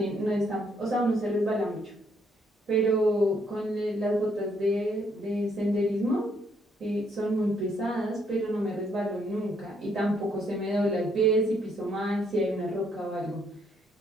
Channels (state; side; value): normal; both; correlation 0.71